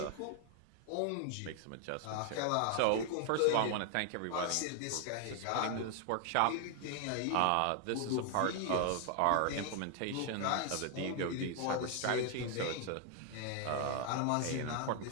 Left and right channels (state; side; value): different; both; correlation 0.00